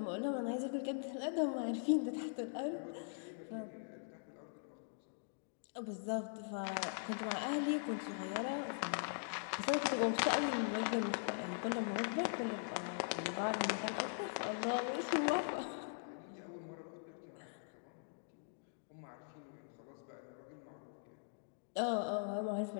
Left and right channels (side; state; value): right; silent; digital silence